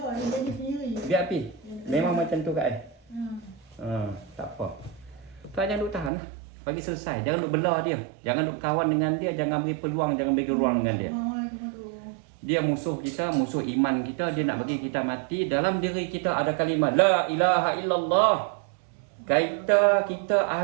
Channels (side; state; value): left; drops out; at 6.1 s